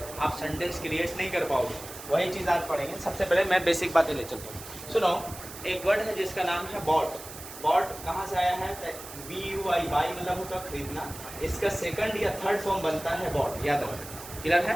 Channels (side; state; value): right; noise; hiss, 13 dB below the sound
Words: आप सेंटेंस क्रिएट नहीं कर पाओगे। वही चीज़ आज पढ़ेंगे। सबसे पहले मैं बेसिक बातें ले चलता हूँ। सुनो, एक वर्ड है जिसका नाम है बॉट। बॉट कहाँ से आया है? BUI, बाई मतलब होता है खरीदना। इसका सेकंड या थर्ड फॉर्म बनता है बॉट, याद रखो। क्लियर